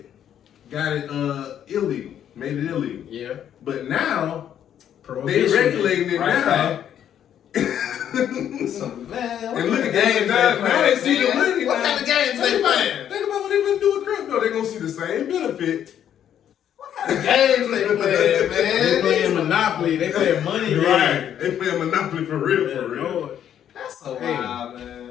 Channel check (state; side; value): quieter; right; 9.9 dB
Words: got it illegal, made it illegal. Yeah. But now Prohibition. they regulating it now. So, man, And look at games now they see the money. What kind of games they playing? Think about what they gonna do with crypto. They're gonna see the same benefit. What kind of games they playing, man? They playing Monopoly. They playing money. Right. They playing Monopoly for real, Yeah, for real. Lord. That's so Hey. wild,